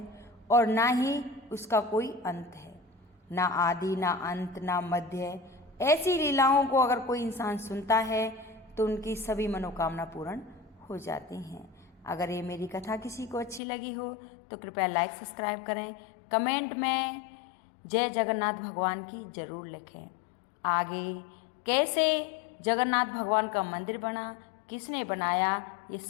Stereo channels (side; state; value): right; drops out; at 13.6 s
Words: और ना ही उसका कोई अंत है, ना आदि ना अंत ना मध्य। ऐसी लीलाओं को अगर कोई इंसान सुनता है तो उनकी सभी मनोकामना पूर्ण हो जाती हैं। अगर ये मेरी कथा किसी को अच्छी लगी हो तो कृपया लाइक सब्सक्राइब करें, कमेंट में जय जगन्नाथ भगवान की जरूर लिखें। आगे कैसे जगन्नाथ भगवान का मंदिर बना, किसने बनाया, ये